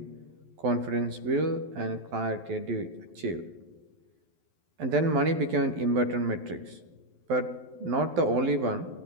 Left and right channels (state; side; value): late; left; 12 ms